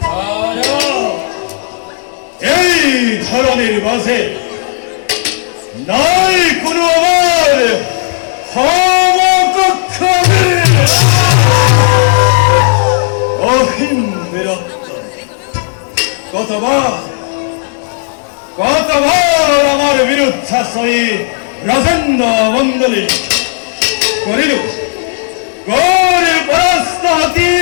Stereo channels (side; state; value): right; silent; digital silence